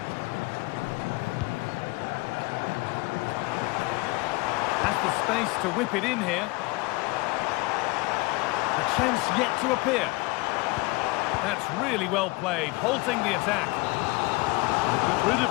Has the space to whip it in here. The chance yet to appear. That's really well played, halting the attack. They got rid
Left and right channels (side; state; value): right; quieter; 23.7 dB